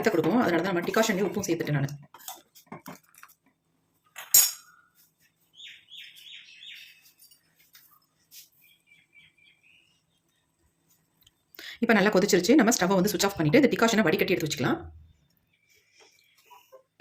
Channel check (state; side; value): identical; both; correlation 1.00